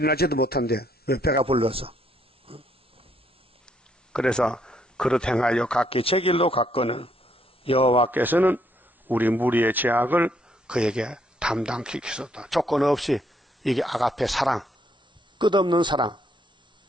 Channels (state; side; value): normal; both; correlation 0.71